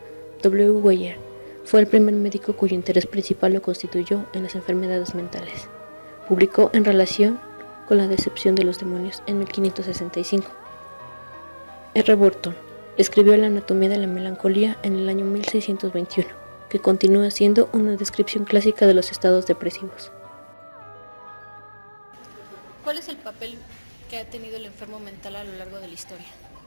W. Weyer fue el primer médico cuyo interés principal lo constituyó en las enfermedades mentales. Publicó En relación con la decepción de los demonios en 1565. R. Burton escribió La anatomía de la melancolía en el año 1621, que continúa siendo una descripción clásica de los estados depresivos. ¿Cuál es el papel que ha tenido el enfermo mental a lo largo de la historia?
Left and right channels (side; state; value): both; inverted; correlation -1.00